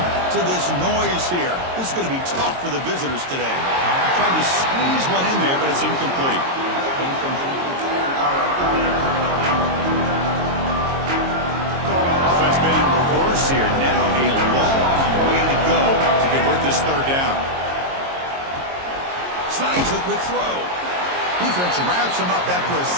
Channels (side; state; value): left; late; 22 ms